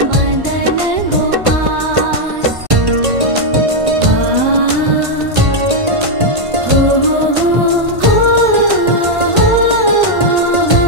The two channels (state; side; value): late; left; 1.5 ms